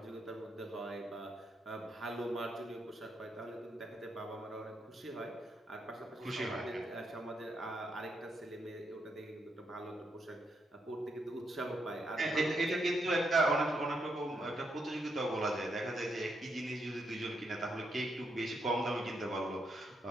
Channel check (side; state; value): both; normal; correlation 0.79